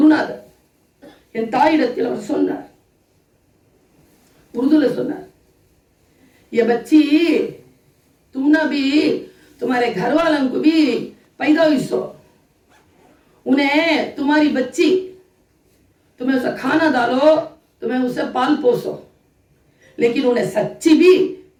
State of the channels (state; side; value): identical; both; correlation 1.00